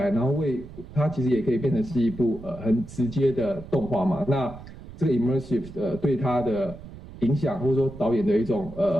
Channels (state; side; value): noise; right; rumble, 16 dB below the sound